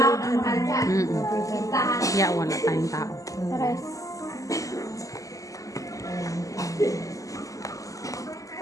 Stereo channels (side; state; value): right; late; 0.16 ms